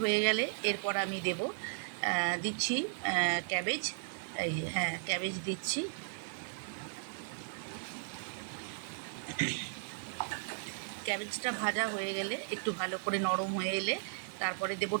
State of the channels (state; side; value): silent; left; digital silence